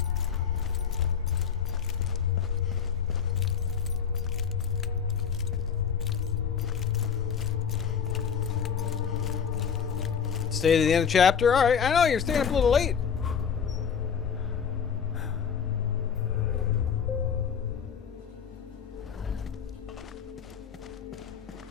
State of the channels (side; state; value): right; quieter; 7.0 dB